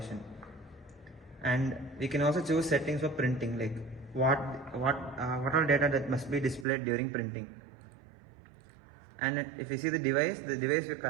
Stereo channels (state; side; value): drops out; left; at 6.7 s